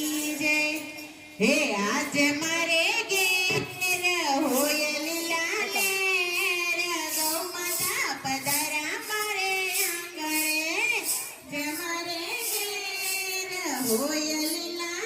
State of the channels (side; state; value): both; identical; correlation 1.00